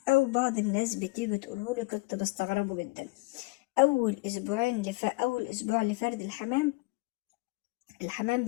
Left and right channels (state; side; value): quieter; right; 24.4 dB